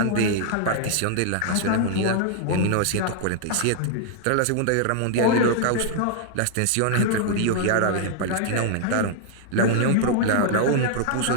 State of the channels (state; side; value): different; both; correlation -0.01